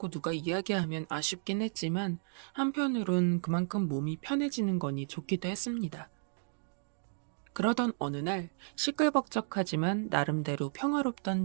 누가 이야기하면 아쉽긴 했지만 한편으론 그만큼 몸이 편해지는 거니 좋기도 했습니다. 그러던 어느 날 시끌벅적하지만 나름대로 평화롭던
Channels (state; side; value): silent; left; digital silence